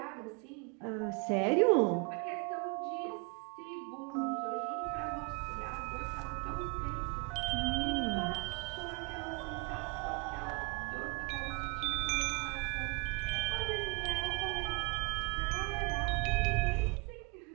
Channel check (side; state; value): left; quieter; 30.8 dB